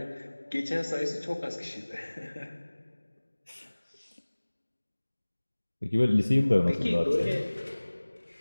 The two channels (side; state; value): both; inverted; correlation -1.00